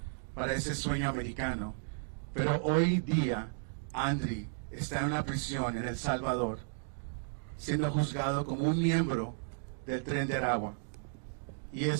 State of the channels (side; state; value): left; silent; digital silence